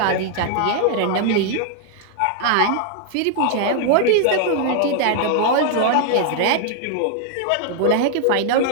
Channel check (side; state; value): both; different; correlation -0.01